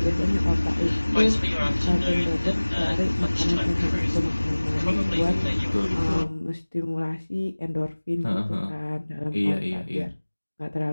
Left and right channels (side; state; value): both; inverted; correlation -1.00